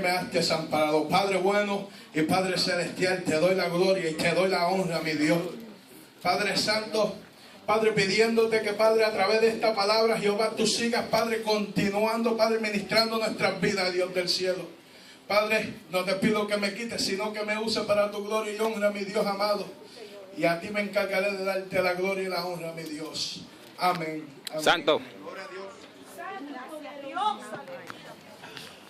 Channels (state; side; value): identical; both; correlation 1.00